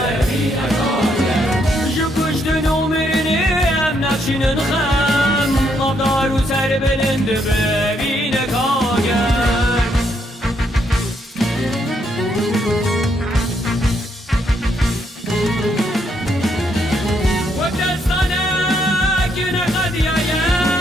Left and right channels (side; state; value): both; normal; correlation 0.74